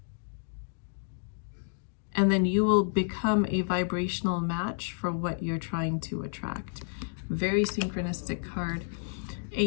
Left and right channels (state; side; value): silent; right; digital silence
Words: and then you will become a vibrational match for what you're trying to attract. Very synchronistic card.